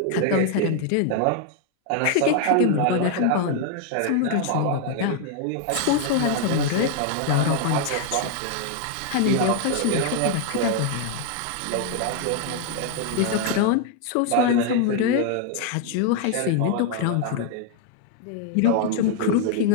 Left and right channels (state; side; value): different; both; correlation 0.00